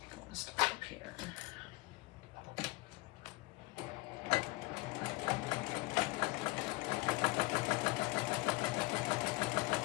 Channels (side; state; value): right; quieter; 24.6 dB